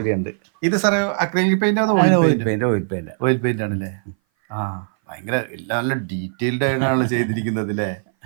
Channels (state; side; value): silent; left; 59 dB below the other